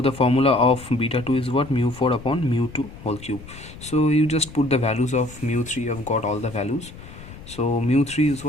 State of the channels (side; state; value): left; noise; rumble, 16 dB below the sound